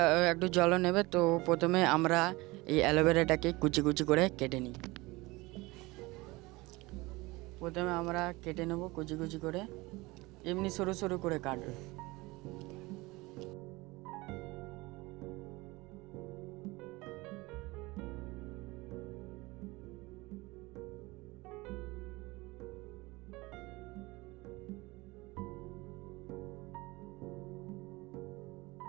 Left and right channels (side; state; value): left; quieter; 22.3 dB